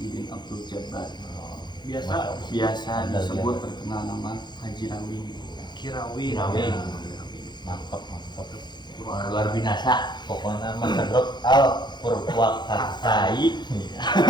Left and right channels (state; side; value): late; right; 0.21 ms